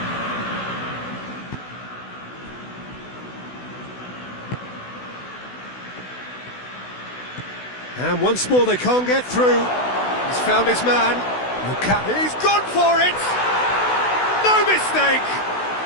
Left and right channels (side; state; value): right; late; 16 ms